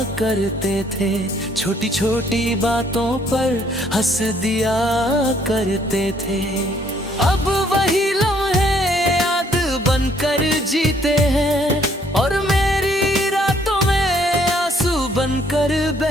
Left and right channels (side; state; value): both; normal; correlation 0.65